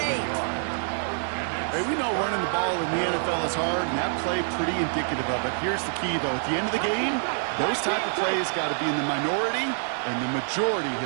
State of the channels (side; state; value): left; silent; digital silence